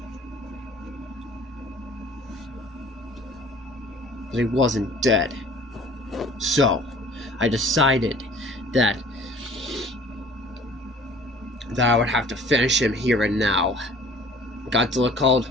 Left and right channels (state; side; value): normal; both; correlation 0.49